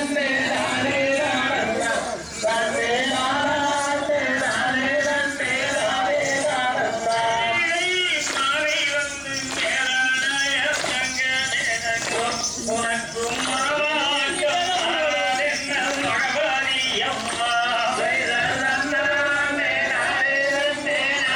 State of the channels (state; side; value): identical; both; correlation 1.00